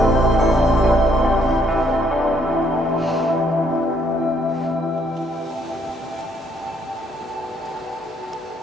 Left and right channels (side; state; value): both; normal; correlation 0.69